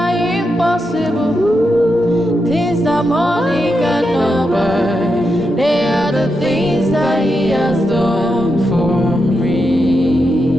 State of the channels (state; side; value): normal; both; correlation 0.86